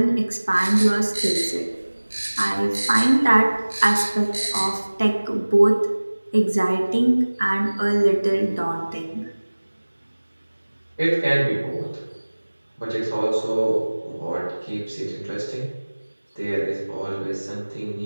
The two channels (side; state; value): both; inverted; correlation -1.00